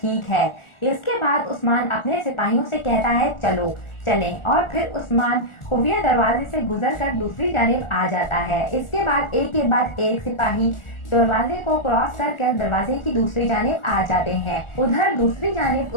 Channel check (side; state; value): right; late; 1.4 ms